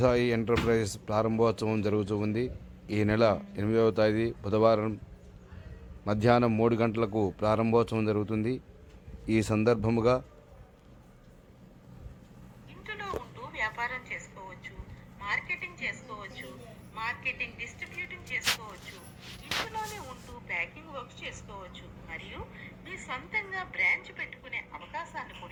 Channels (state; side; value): identical; both; correlation 1.00